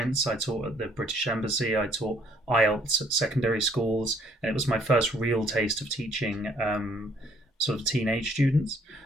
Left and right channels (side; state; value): both; normal; correlation 0.63